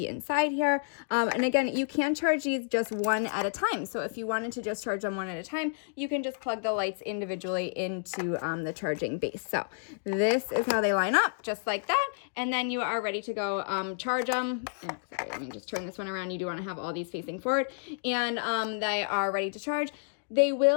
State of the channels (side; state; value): right; silent; digital silence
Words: inside here. And again, you can charge these just 1 at a time. So if you wanted to just charge them 1 at a time, you can just plug the lights individually into the charging base. So this is how they line up, just like that. And then you are ready to go charge them. Sorry, let me just turn this one around. You do want to have all these facing forward. And they are ready to charge. They